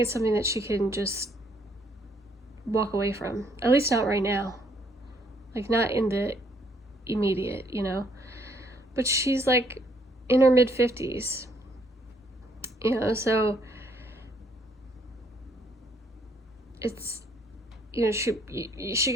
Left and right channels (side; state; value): both; normal; correlation 0.68